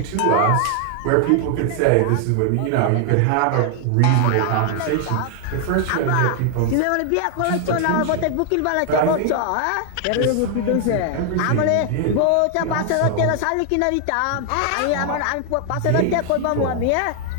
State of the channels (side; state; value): both; different; correlation 0.00